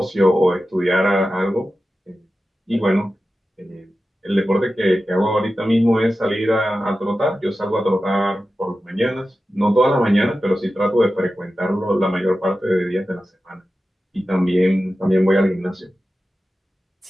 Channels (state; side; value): normal; both; correlation 0.93